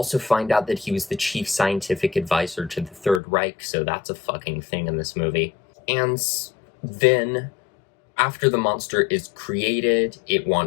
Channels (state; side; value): drops out; right; at 3.2 s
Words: find out that he was the chief scientific advisor to the Third Reich, so that's a fucking thing in this movie. And then, after the monster is created, it